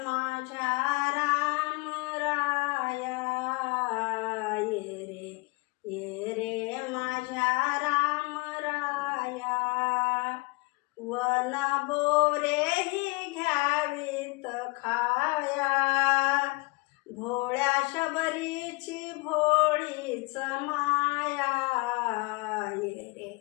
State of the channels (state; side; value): quieter; right; 26.9 dB